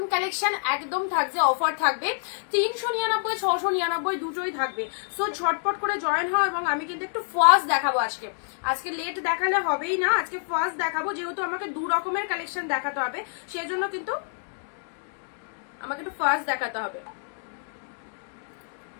কালেকশন একদম থাকছে, অফার থাকবে। 399, 699 দুটোই থাকবে। সো ঝটপট করে জয়েন হও। এবং আমি কিন্তু একটু ফার্স্ট দেখাবো আজকে। আজকে লেট দেখালে হবেই না, আজকে ফার্স্ট দেখাবো, যেহেতু আমাকে 2 রকমের কালেকশন দেখাতে হবে, সেজন্য কিন্তু আমাকে একটু ফার্স্ট দেখাতে হবে।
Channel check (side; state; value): right; silent; digital silence